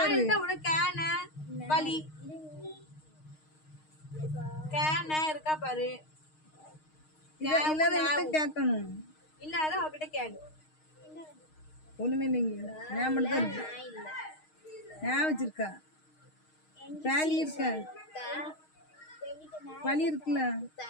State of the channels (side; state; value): right; late; 6.5 ms